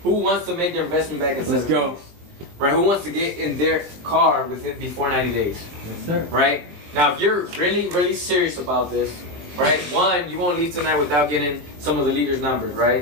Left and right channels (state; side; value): late; left; 21 ms